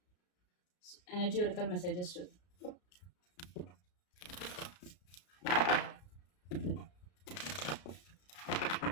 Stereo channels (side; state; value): right; late; 33 ms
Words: ఎనర్జీ ఒరికల్ మెసేజెస్ చూద్దాం.